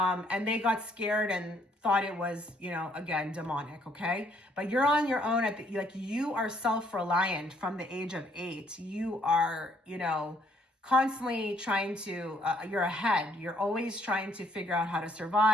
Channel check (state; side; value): normal; both; correlation 0.67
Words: they got scared and thought it was, you know, again, demonic. Okay. But you're on your own like you are self-reliant from the age of 8. You are, you know, constantly trying to, you're ahead. You're always trying to figure out how to